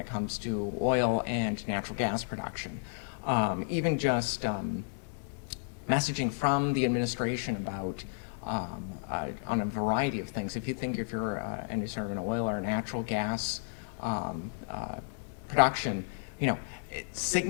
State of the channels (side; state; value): right; silent; digital silence